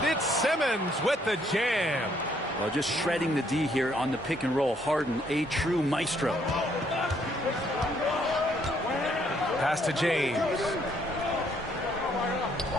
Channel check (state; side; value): normal; both; correlation 0.69